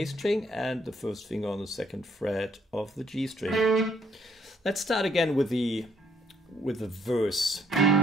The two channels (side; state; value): both; normal; correlation 0.68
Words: string and the first finger on the 2nd fret of the G string. Let's start again with the verse.